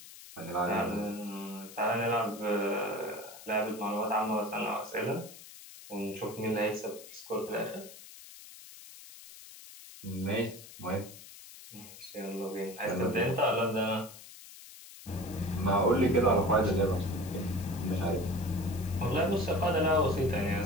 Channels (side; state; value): left; noise; hiss, 17 dB below the sound